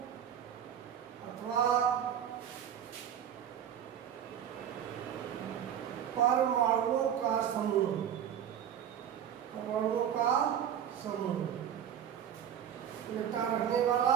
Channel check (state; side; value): quieter; left; 9.4 dB